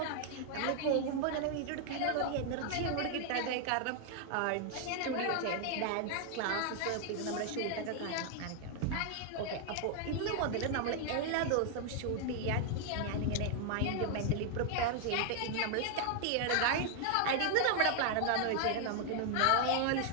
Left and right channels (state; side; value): different; both; correlation 0.00